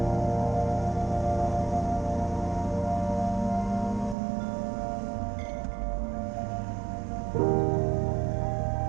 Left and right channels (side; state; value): left; drops out; at 4.2 s